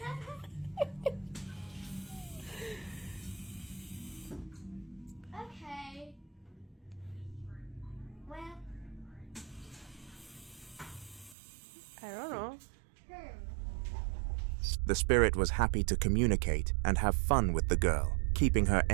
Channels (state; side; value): drops out; left; at 11.4 s